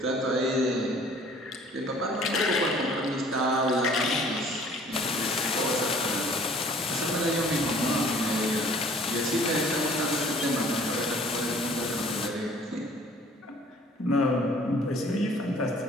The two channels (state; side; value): normal; both; correlation 0.53